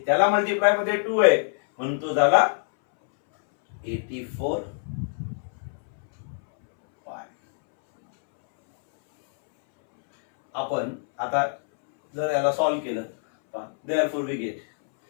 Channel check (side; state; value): right; silent; 62 dB below the other